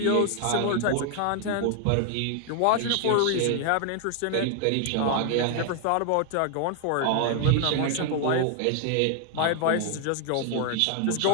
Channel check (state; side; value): different; both; correlation 0.00